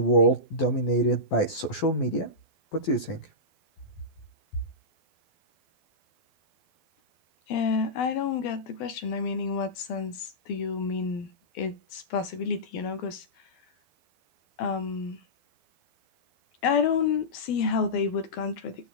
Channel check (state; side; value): late; right; 12 ms